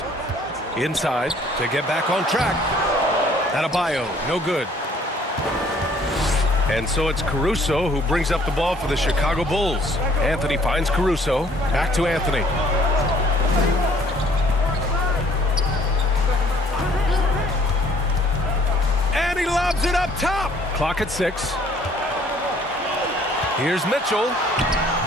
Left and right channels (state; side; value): normal; both; correlation 0.59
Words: Inside to get back on track. Adebayo, no good. And so it's Caruso who brings up the ball for the Chicago Bulls. Anthony finds Caruso. Back to Anthony. And he lobs it up top. Clock at 6. Here's Mitchell.